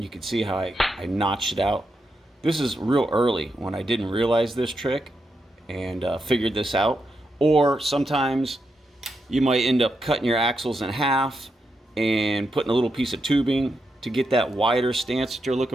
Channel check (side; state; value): both; normal; correlation 0.84